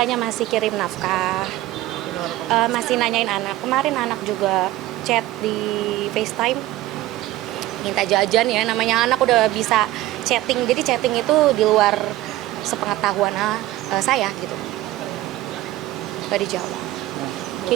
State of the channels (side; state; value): left; quieter; 16.1 dB